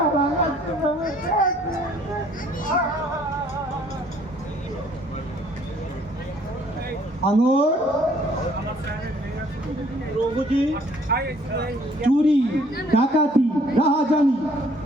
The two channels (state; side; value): normal; both; correlation 0.60